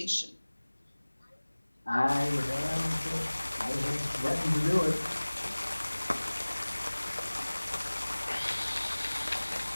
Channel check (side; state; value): both; inverted; correlation -1.00